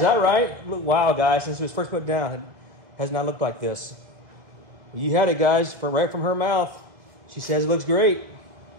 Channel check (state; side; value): late; left; 2.0 ms